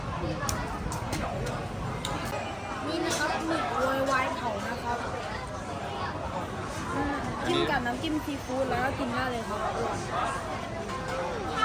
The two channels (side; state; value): both; identical; correlation 1.00